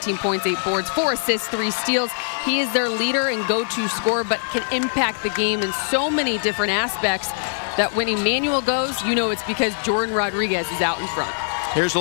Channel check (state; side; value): silent; right; digital silence